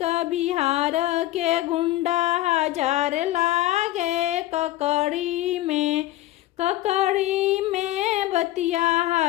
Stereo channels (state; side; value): quieter; right; 15.5 dB